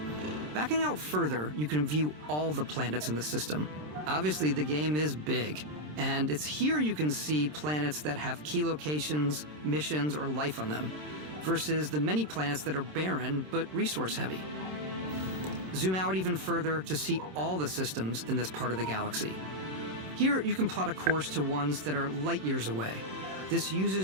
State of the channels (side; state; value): left; late; 27 ms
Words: Backing out further, you can view all the planets in the system. Obviously, the game is big, and it's here you can see planets that have key locations, missions, or life on them, versus the many planets that are barren but resource-heavy. Zoom out even further to see all the systems in this part of the galaxy. Here, you can plot a course to ones that are light years away. This